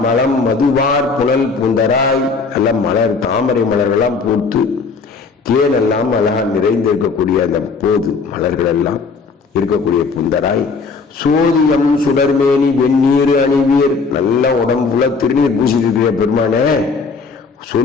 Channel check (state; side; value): quieter; right; 4.7 dB